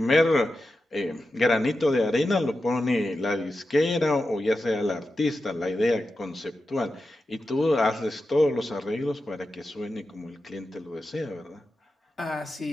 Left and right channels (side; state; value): both; normal; correlation 0.91